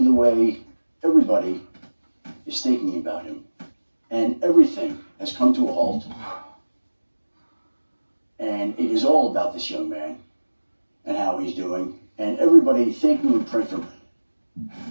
the way everybody is thinking about him. And everything has come to a halt. And it is all about this young man and how he's doing. And everybody thanking and praying for him.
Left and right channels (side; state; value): both; inverted; correlation -1.00